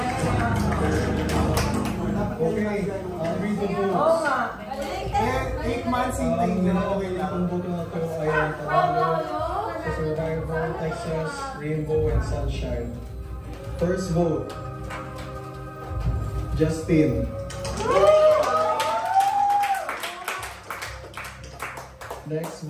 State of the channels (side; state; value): both; identical; correlation 1.00